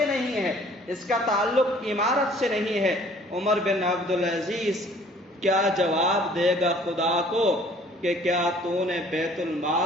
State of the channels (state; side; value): normal; both; correlation 0.55